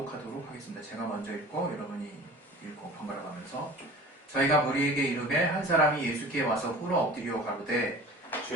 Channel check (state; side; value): normal; both; correlation 0.41